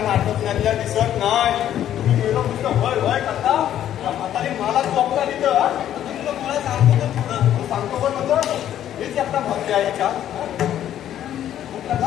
नाटक नेल्या दिसत नाही तुम्ही गेलो नुसतं वय वय करता म्हातारी मला चोपता तिथं तुला मला सांगतो तर पुढं सांगतो पण नंतर मीच एकटा भरते आहे याच्यात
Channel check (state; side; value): quieter; right; 11.1 dB